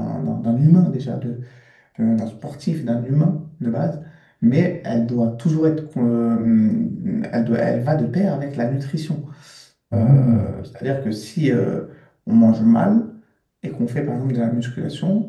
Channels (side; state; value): both; identical; correlation 1.00